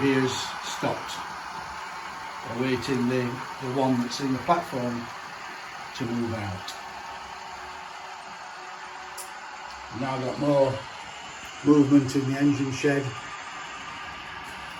here has stopped, awaiting the one that's in the platform to move out. We've now got more movement in the engine shed,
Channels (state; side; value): identical; both; correlation 1.00